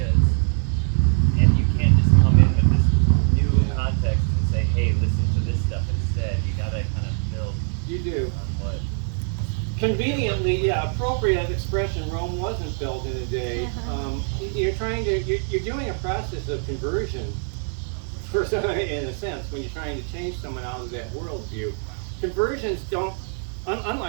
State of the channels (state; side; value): silent; left; 55 dB below the other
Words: and you can't just come in with this new context and say, hey, listen to this stuff instead. You gotta kind of build You do. on what. Conveniently, yeah, appropriate expression. Rome wasn't built in a day. You're doing a process of conversion, for some, in a sense, when you're trying to change someone out of that worldview. Conversions don't,